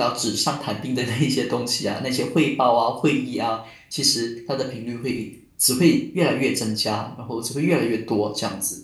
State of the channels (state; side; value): identical; both; correlation 1.00